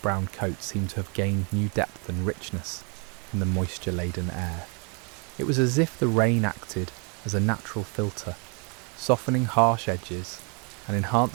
coats seemed to have gained new depth and richness in the moisture-laden air. It was as if the rain acted as a natural filter, softening harsh edges and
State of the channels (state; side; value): quieter; left; 34.7 dB